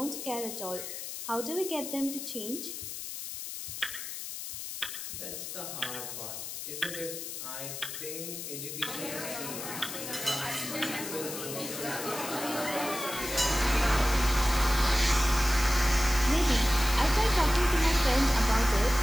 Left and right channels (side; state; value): left; noise; hiss, 7 dB below the sound